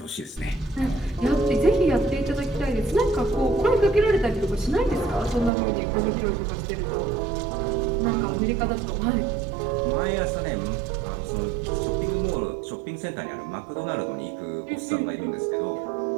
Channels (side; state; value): left; drops out; at 5.5 s